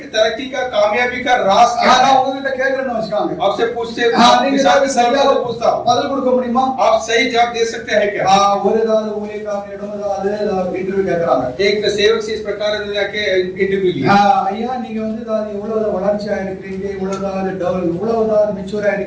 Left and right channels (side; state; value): both; identical; correlation 1.00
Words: तरक्की का कामयाबी का राज क्या है? கேட்கறேன்னு வச்சுக்காங்க. आपसे पूछते நீங்க சரியாக पूछता हूं, பதில் கொடுக்க முடியுமா? आप सही जवाब दे सकते हैं क्या? ஒரு ஏதாவது ஊழியக்காரனிடம் ஏதாவது இன்டர்வியூ கேட்கறாங்க. एक सेवक से इस प्रकार जाके इंटरव्यू लिया, ஐயா நீங்க வந்து இவ்வளவு வளர்ச்சியா இருக்கிறீங்க, இவ்வளவு மெச்சூரா